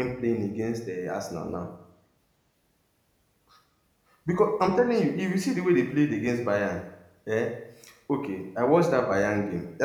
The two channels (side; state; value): both; identical; correlation 1.00